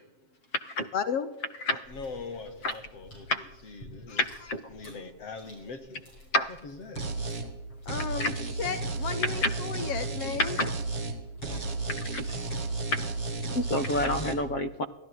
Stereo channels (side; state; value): right; late; 7.4 ms